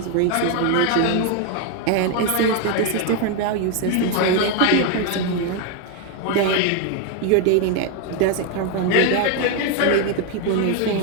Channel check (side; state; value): both; different; correlation 0.01